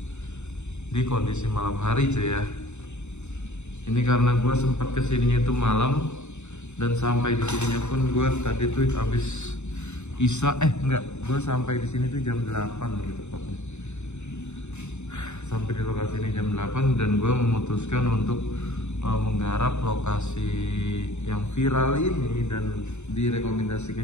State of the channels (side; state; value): right; late; 0.82 ms